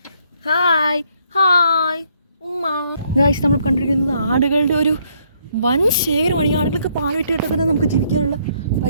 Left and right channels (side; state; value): both; inverted; correlation -0.69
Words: ഹായ് ഹായ് ഉമ്മ. ഗൈസ്, നമ്മൾ കണ്ടിരിക്കുന്നത് ആടുകളുടെ ഒരു വൻ ശേഖരമാണ്. ഈ ആടുകൾക്ക് പാൽ വിറ്റിട്ട് തന്നെ നമുക്ക് ജീവിക്കാനുള്ള